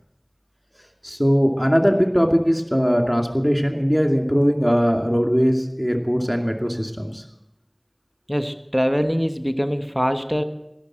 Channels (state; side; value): identical; both; correlation 1.00